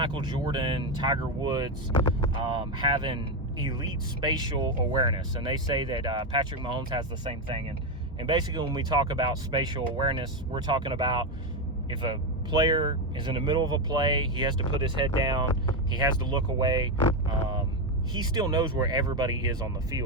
Jordan, Tiger Woods having elite spatial awareness, and they say that Patrick Mahomes has the same thing. And basically, when we talk about spatial awareness, we're talking about if a player is in the middle of a play, he has to put his head down, he has to look away. He still knows where everybody is on the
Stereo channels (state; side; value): normal; both; correlation 0.09